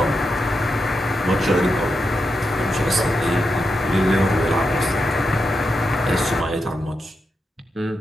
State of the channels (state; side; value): normal; both; correlation 0.86